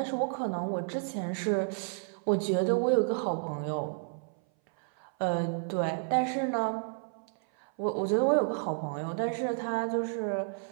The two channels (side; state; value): left; silent; 57 dB below the other